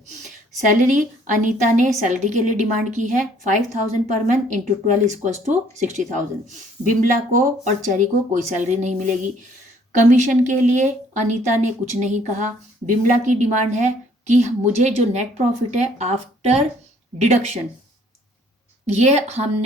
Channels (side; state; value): both; normal; correlation 0.61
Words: Salary Anita ने सैलरी के लिए डिमांड की है 5,000 per month into 12 equals to 60,000। Bimla को और cherry को कोई सैलरी नहीं मिलेगी। कमीशन के लिए अनीता ने कुछ नहीं कहा। बिमला की डिमांड है कि मुझे जो नेट प्रॉफिट है आफ्टर डिडक्शन, ये